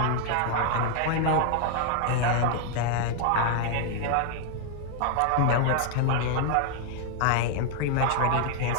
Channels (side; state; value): both; different; correlation 0.00